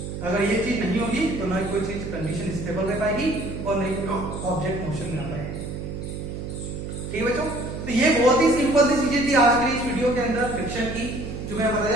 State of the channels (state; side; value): noise; right; hum, 7 dB below the sound